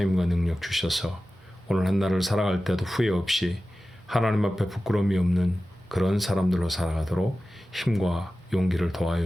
힘과 능력 주셔서 오늘 한 날을 살아갈 때도 후회 없이 하나님 앞에 부끄러움이 없는 그런 사람들로 살아가도록 힘과 용기를 더하여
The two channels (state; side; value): normal; both; correlation 0.95